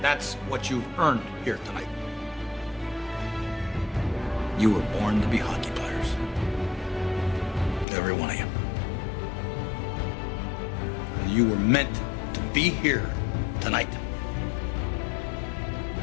That's what you've earned here tonight. You were born to be hockey players. Every one of you. You were meant to be here tonight.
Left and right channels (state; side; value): drops out; right; at 7.9 s